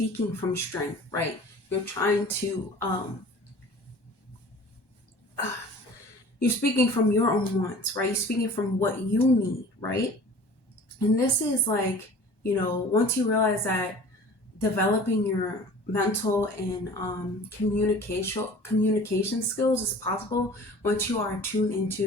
from strength, right? You're trying to, you're speaking from your own wants, right? You're speaking from what you need, right? And this is like, you know, once you realize that developing your mental and communication skills is possible, once you are tuned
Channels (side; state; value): right; late; 1.1 ms